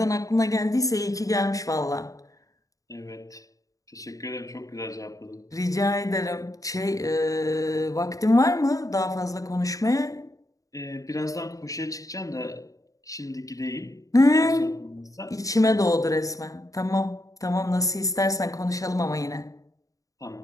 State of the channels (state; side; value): late; right; 0.16 ms